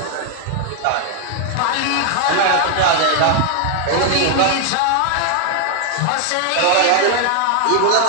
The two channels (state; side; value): different; both; correlation 0.00